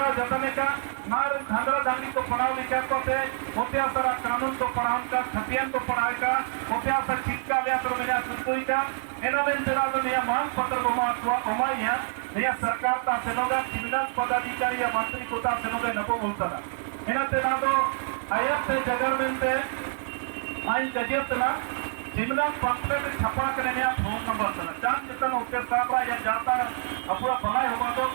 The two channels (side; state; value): left; silent; digital silence